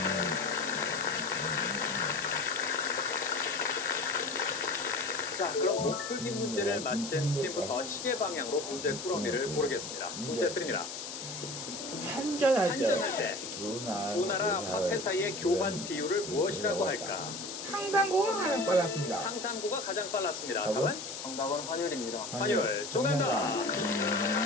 자, 그럼 풀기 문제를 맞힌 팀부터 시계 방향으로 문제 꾸러미를 고르겠습니다. 문제 드립니다. 한전할 한전할 때 때 두 나라 화폐 사이의 교환 비율을 무엇이라고 할까? 상상고가 가장 빨랐습니다. 상산고가 가장 빨랐습니다. 답은 정답은 환율입니다. 환율 정답입니다.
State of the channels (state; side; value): noise; left; hiss, 8 dB below the sound